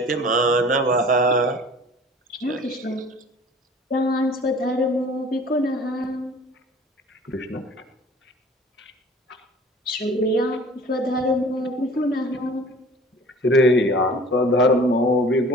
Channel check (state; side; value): normal; both; correlation 0.47